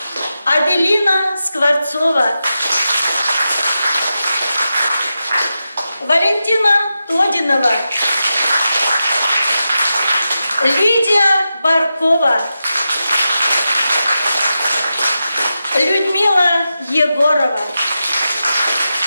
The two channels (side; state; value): both; inverted; correlation -0.90